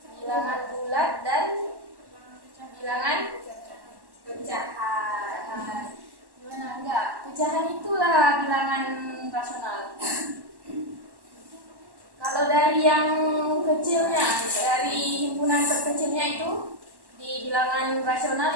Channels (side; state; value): left; late; 1.1 ms